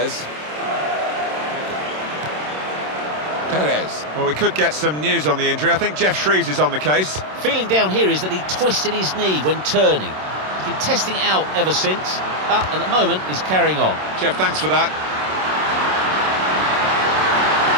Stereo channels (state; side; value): late; left; 27 ms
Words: Perez. Well, we could get some news on the injury. I think Jeff Shreves is on the case. Feeling down here is that he twisted his knee when turning. He's been testing it out ever since, but at the moment he's carrying on. Jeff, thanks for that.